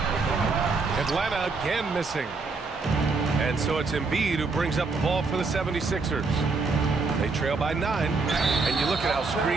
Atlanta again missing. And so it's Embiid who brings up the ball for the 76ers. They trail by 9. And you look at how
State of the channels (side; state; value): left; quieter; 4.1 dB